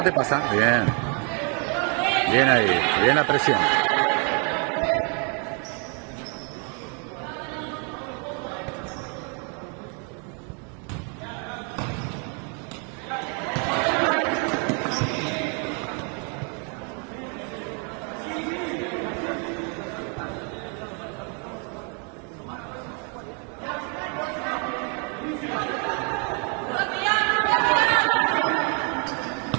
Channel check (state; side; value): quieter; left; 37.7 dB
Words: te pasa. Bien. Bien ahí, bien la presión.